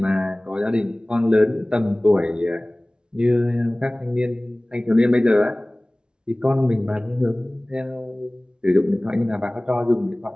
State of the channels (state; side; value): late; left; 0.055 ms